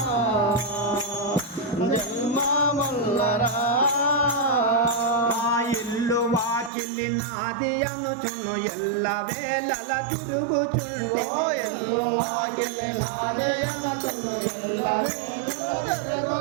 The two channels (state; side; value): drops out; left; at 6.7 s